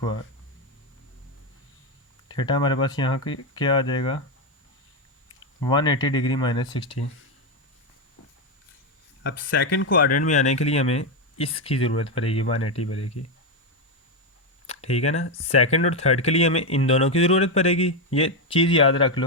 theta हमारे पास यहाँ की क्या आ जाएगा? 180 डिग्री -60। अब सेकंड क्वाड्रेंट में आने के लिए हमें इसकी ज़रूरत पड़ेगी, 180 पड़ेगी, ठीक है ना। सेकंड और थर्ड के लिए हमें इन दोनों की ज़रूरत पड़ेगी, ये चीज़ याद रख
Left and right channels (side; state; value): both; normal; correlation 0.07